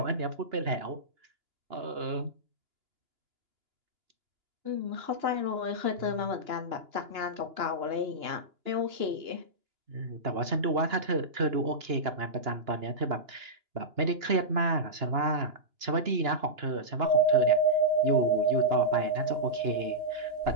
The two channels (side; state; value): left; late; 2.9 ms